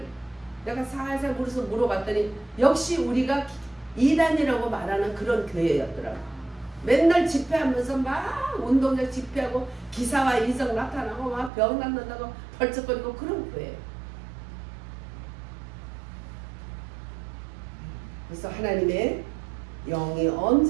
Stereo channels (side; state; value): left; drops out; at 11.5 s